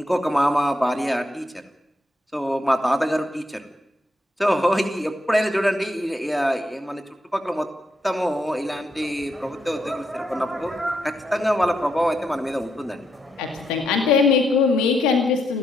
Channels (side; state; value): both; normal; correlation 0.79